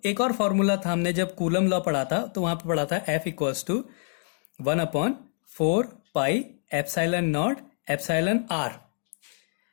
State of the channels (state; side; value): silent; right; digital silence